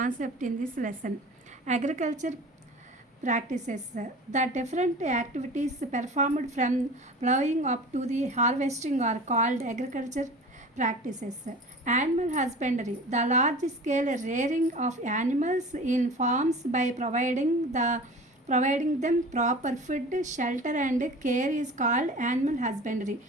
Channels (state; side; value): normal; both; correlation 0.39